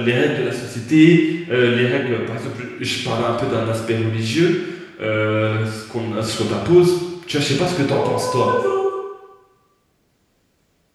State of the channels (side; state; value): both; identical; correlation 1.00